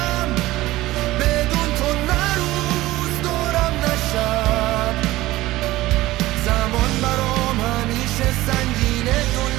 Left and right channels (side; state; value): left; quieter; 17.4 dB